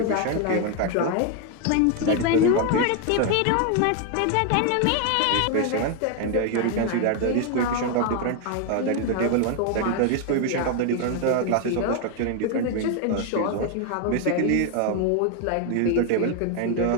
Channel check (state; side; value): different; both; correlation 0.01